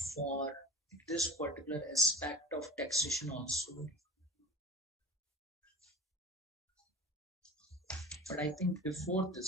for this particular aspect of taxation also. But I think before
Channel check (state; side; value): normal; both; correlation 0.33